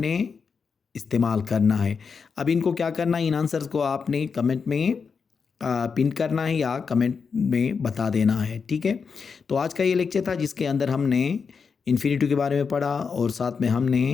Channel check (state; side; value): quieter; right; 5.6 dB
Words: इस्तेमाल करना है। अब इनको क्या करना है, इन आंसर्स को आपने कमेंट में पिन करना है या कमेंट में बता देना है, ठीक है। तो आज का ये लेक्चर था जिसके अंदर हमने इन्फिनिटिव के बारे में पढ़ा और साथ में हमने